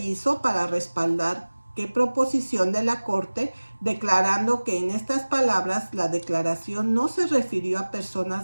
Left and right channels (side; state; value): both; inverted; correlation -1.00